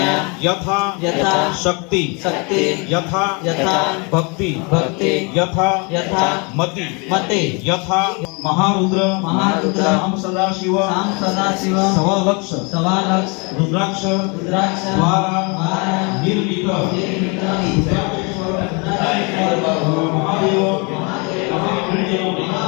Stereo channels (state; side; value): quieter; right; 31.6 dB